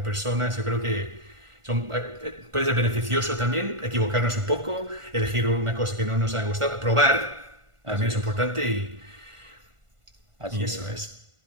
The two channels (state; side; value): late; left; 1.5 ms